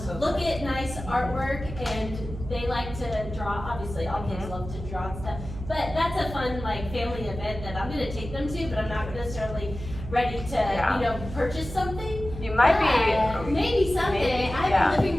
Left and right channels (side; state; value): right; noise; hum, 10 dB below the sound